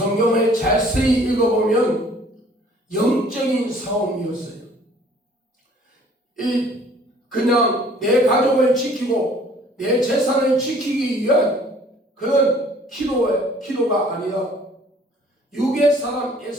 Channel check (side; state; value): both; normal; correlation 0.55